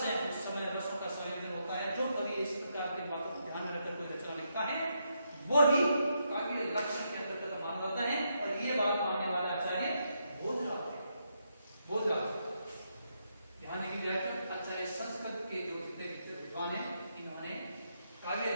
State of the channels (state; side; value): inverted; both; correlation -0.80